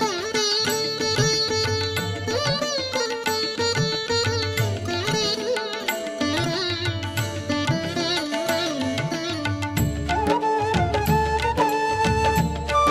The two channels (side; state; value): both; identical; correlation 1.00